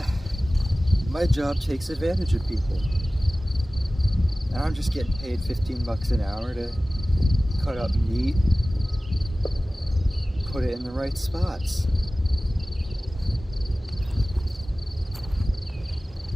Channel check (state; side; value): normal; both; correlation 0.97